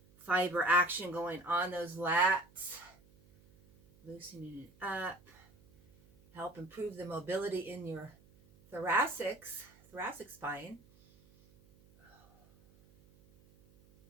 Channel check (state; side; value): noise; right; hum, 27 dB below the sound